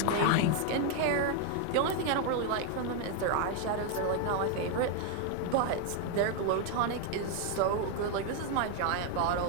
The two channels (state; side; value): different; both; correlation 0.01